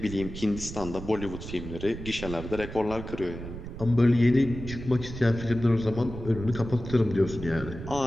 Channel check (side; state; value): right; noise; rumble, 10 dB below the sound